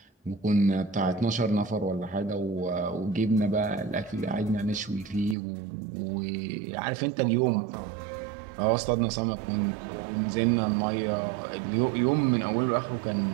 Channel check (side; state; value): left; drops out; at 5.4 s